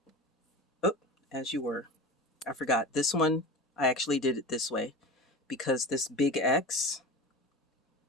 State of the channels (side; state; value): both; normal; correlation 0.31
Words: Oh, as you were. I forgot. This one, I actually did it this way because this big X,